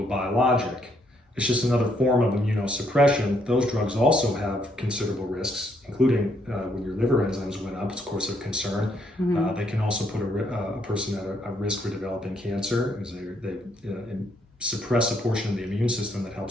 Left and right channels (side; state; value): both; normal; correlation 0.72